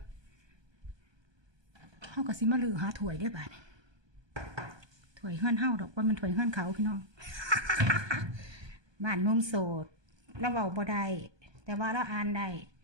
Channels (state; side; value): late; left; 1.2 ms